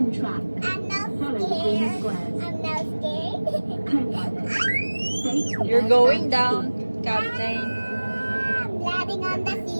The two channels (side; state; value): both; inverted; correlation -1.00